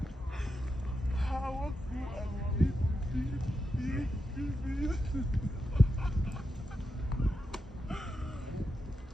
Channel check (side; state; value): both; normal; correlation 0.87